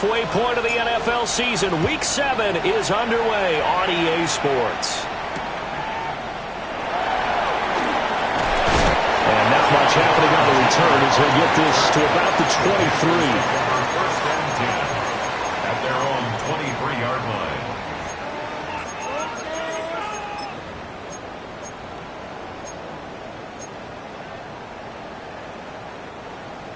point of the NFL season, Week 7 is underway on EA Sports. And not much happening on the return as they get this to about the 23. First and 10 at their own 23-yard line.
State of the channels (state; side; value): identical; both; correlation 1.00